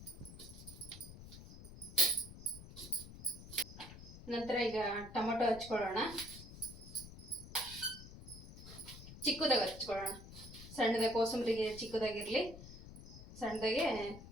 ನಂತರ ಈಗ ಟೊಮೊಟೊ ಹಚ್ಕೊಳ್ಳೋಣ, ಚಿಕ್ಕದಾಗಿ ಹಚ್ಕೊಳ್ಳೋಣ. ಸಣ್ಣದಾಗಿ ಕೋಸಂಬರಿಗೆ ಚಿಕ್ಕದಾಗಿರಲಿ, ಸಣ್ಣದಾಗೆ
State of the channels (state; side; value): noise; left; rumble, 14 dB below the sound